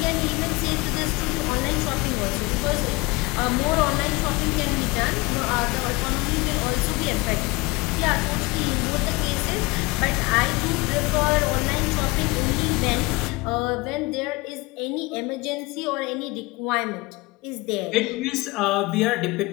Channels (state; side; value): quieter; right; 23.8 dB